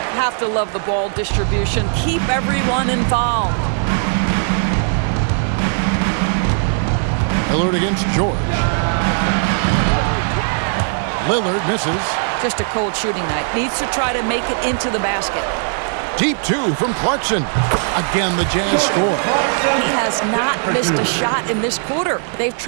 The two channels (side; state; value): left; silent; 67 dB below the other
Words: Have to love the ball distribution. Keep everyone involved. Lillard against George. Lillard misses. Just a cold shooting night. Needs to try to make it into the basket. Deep 2 from Clarkson. Again, the Jazz score. He has not missed a shot in this quarter. They've